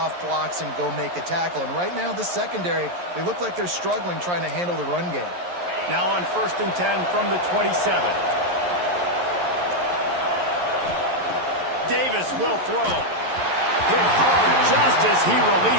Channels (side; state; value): left; late; 11 ms